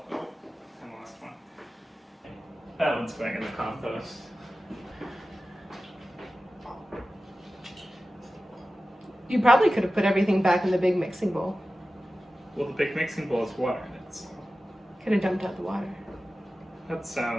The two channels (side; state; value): both; normal; correlation 0.95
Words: Oh, I lost one. That one's going in the compost. You probably could have put everything back in the big mixing bowl. Well, the big mixing bowl has water in it, so Could have dumped out the water. that